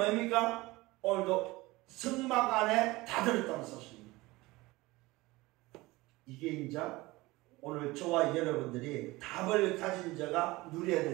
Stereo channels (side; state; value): left; quieter; 20.7 dB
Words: 오늘도 성막 안에 다 들었다는 사실입니다. 이게 이제 오늘 저와 여러분들이 답을 가진 자가 누려야